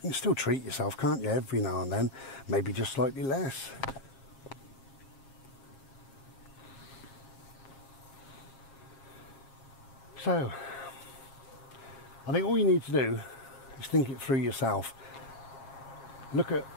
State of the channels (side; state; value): right; late; 7.4 ms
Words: still treat yourself, can't you, every now and then, maybe just slightly less. So, I think all you need to do is think it through yourself. Look at